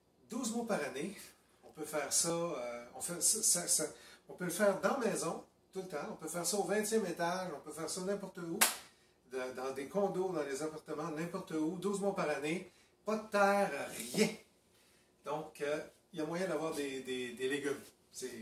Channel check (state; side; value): identical; both; correlation 1.00